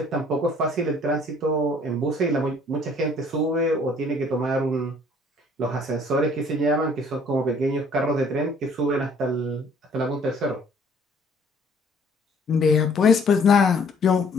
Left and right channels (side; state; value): both; normal; correlation 0.58